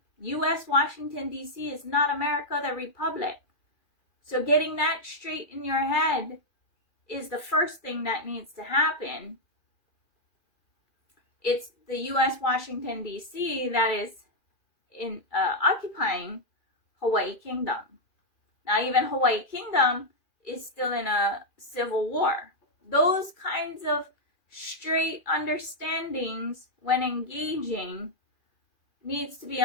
U.S. Washington, D.C. is not America, the Republic. So getting that straight in your head is the first thing that needs to happen. It's the U.S. Washington, D.C. that is occupying Hawaii Kingdom. Now, even Hawaii Kingdom is still in a civil war. Those kinds of straight understandings when engaging needs to be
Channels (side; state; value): right; late; 2.4 ms